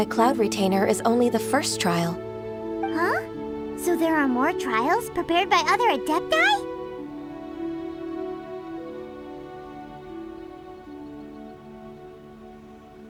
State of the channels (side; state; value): both; identical; correlation 1.00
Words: Cloud Retainer is only the first trial. Huh? So there are more trials prepared by other Adepti?